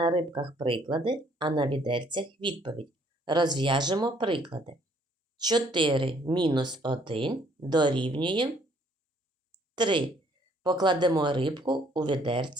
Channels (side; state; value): both; normal; correlation 0.64